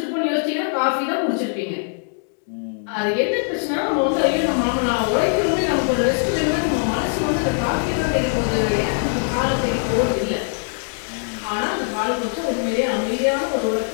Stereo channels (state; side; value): silent; right; digital silence